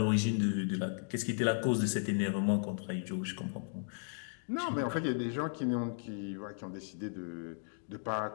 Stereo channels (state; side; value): silent; right; digital silence